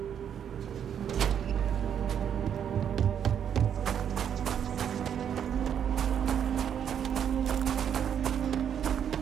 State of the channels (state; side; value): quieter; left; 8.7 dB